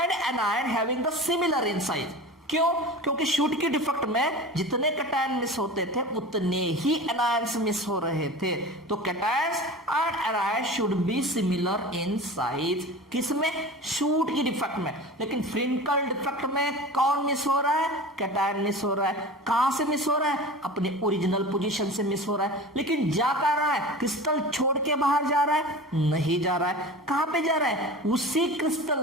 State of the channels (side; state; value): both; normal; correlation 0.34